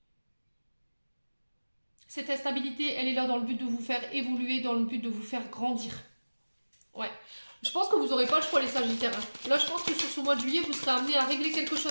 Cette instabilité, elle est là dans le but de vous faire évoluer, dans le but de vous faire grandir. Ouais. Je pense que vous n'aurez pas le choix, les Sagittaires. Là, je pense que sur ce mois de juillet, vous serez amené à régler quelque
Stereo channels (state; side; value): inverted; both; correlation -1.00